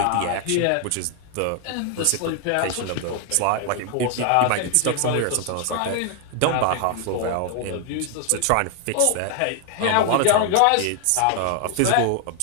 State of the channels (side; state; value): both; different; correlation 0.00